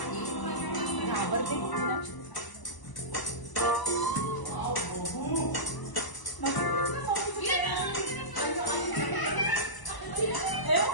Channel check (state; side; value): late; right; 1.1 ms